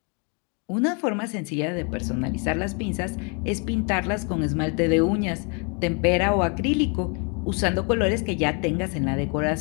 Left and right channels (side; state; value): right; quieter; 35.3 dB